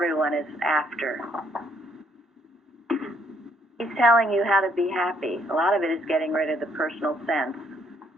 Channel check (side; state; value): both; normal; correlation 0.68